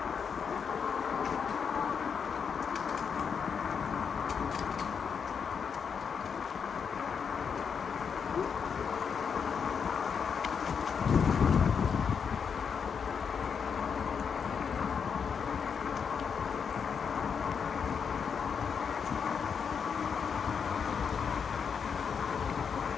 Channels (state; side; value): quieter; right; 6.6 dB